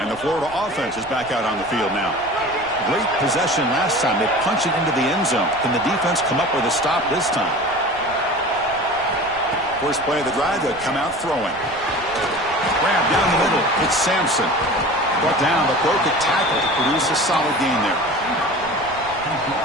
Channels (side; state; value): right; noise; rumble, 21 dB below the sound